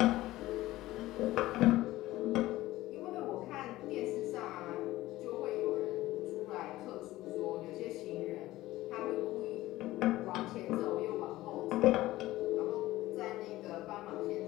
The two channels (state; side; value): quieter; right; 16.8 dB